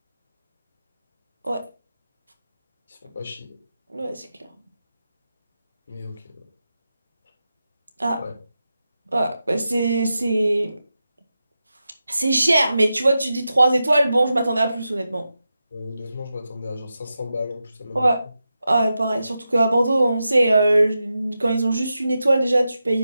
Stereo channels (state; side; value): inverted; both; correlation -0.90